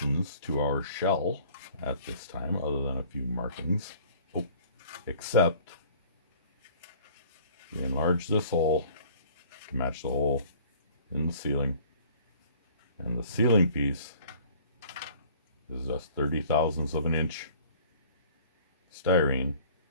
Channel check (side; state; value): both; inverted; correlation -0.50